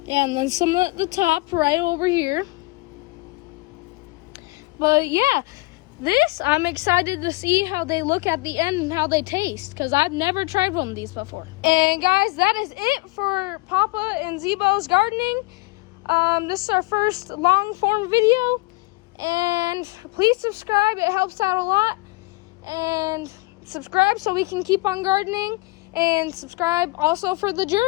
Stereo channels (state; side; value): quieter; right; 24.3 dB